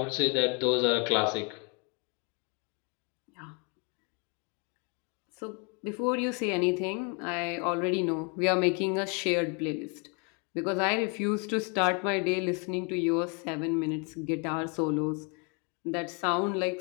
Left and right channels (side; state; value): right; quieter; 33.8 dB